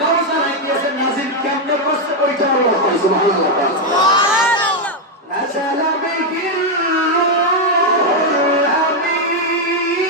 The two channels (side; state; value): both; normal; correlation 0.02